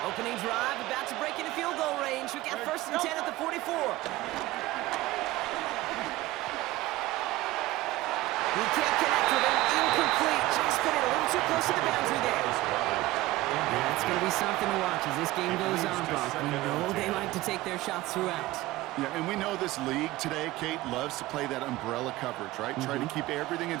Opening drive, about to break into field goal range. We got 1st and 10 at the 44. He can't connect with him. Incomplete. Just put it a little too close to the boundary there. That's going to be something to watch as this game goes on, Brock. We know they like to take their shots throughout. Yeah, and we know this league today, Kate, loves to play that umbrella coverage, right? Try to keep everything in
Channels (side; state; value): left; quieter; 17.8 dB